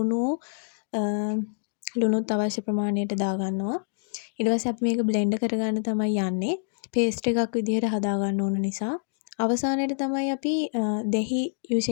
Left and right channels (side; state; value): right; silent; digital silence